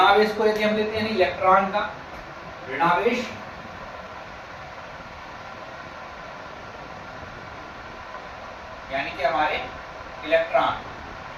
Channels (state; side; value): identical; both; correlation 1.00